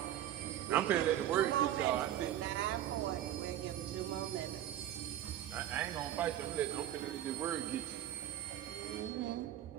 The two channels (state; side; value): quieter; left; 12.0 dB